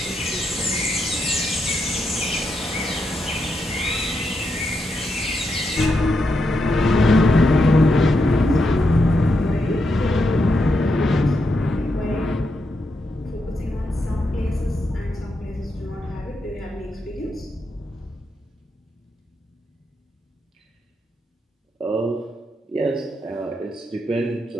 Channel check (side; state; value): both; normal; correlation 0.83